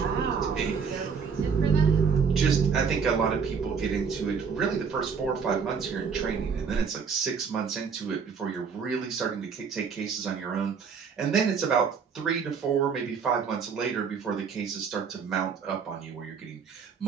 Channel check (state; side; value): quieter; left; 6.1 dB